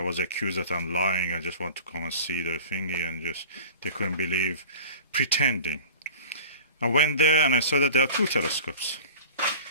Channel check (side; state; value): both; inverted; correlation -0.40